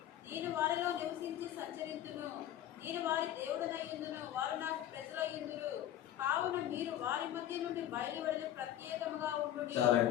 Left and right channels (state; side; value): quieter; right; 11.9 dB